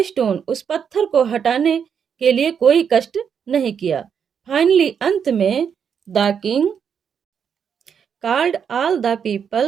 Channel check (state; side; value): quieter; left; 7.4 dB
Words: stone, उस पत्थर को हटाने के लिए कोई कष्ट नहीं किया। फाइनली, अंत में, the king called all the